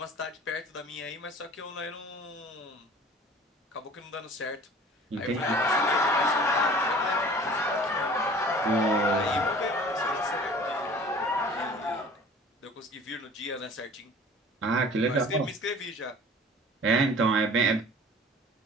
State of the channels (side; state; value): both; normal; correlation 0.46